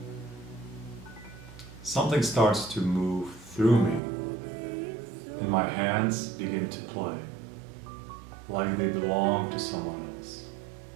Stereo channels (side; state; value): left; drops out; at 4.0 s